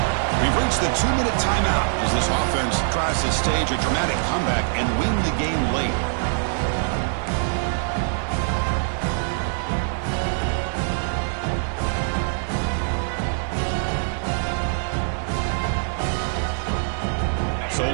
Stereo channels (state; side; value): silent; left; 63 dB below the other